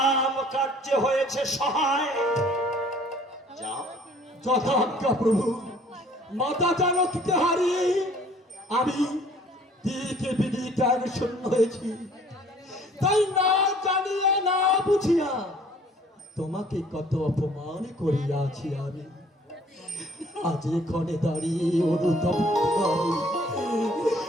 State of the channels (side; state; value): both; normal; correlation 0.55